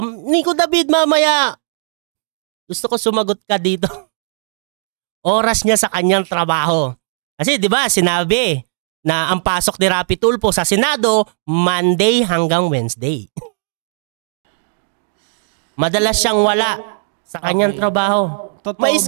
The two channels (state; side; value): silent; left; digital silence